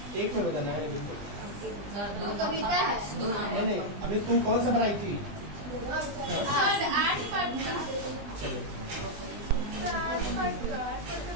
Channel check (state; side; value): late; left; 20 ms